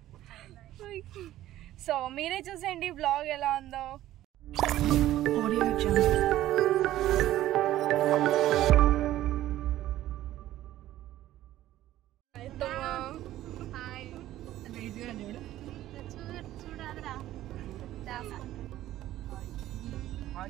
సో మీరే చూసేయండి బ్లాగ్ ఎలా ఉందో. Audio Jungle.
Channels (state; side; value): quieter; left; 14.0 dB